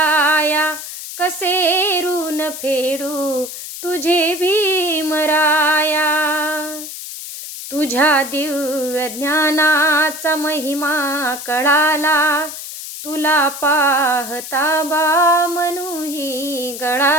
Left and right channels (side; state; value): left; noise; hiss, 10 dB below the sound